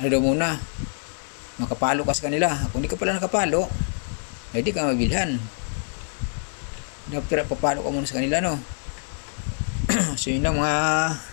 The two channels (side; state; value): right; silent; 62 dB below the other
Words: daw muna, makapalo ka sa kanila. Kung hindi ka pala nakapalo, hindi ka mabilhan. Dapat papalo ka muna sa kanila, no? So yun lang mga